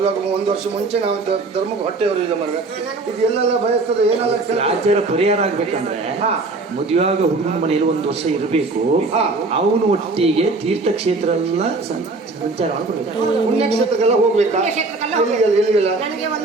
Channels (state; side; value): quieter; left; 3.5 dB